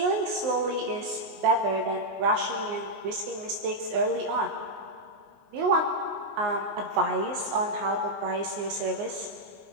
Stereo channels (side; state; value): left; late; 19 ms